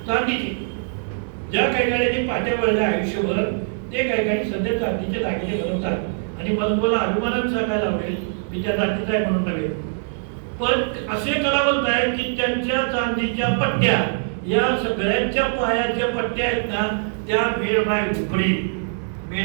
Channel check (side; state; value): left; silent; digital silence